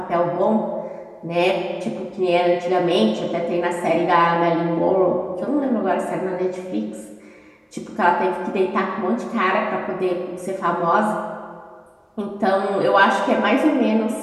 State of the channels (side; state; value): both; identical; correlation 1.00